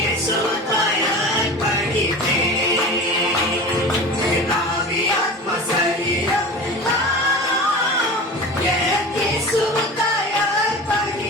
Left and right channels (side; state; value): both; normal; correlation 0.34